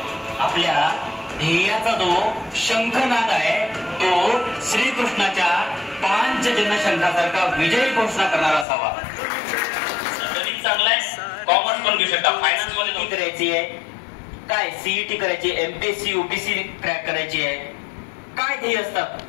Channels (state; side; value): drops out; right; at 8.7 s